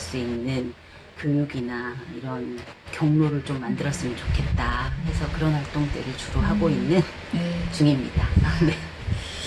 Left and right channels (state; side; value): identical; both; correlation 1.00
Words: 있는 교육이나 이런 경로를 좀 만들었으면 좋겠다 해서 그런 활동들을 주로 하고 있는 중입니다. 네.